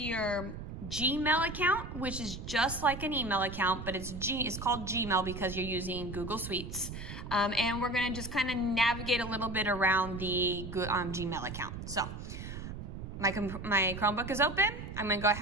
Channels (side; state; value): right; noise; rumble, 9 dB below the sound